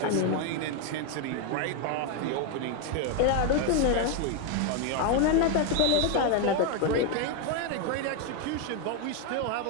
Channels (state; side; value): different; both; correlation 0.01